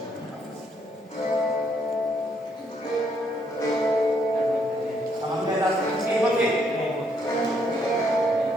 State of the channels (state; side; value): normal; both; correlation 0.72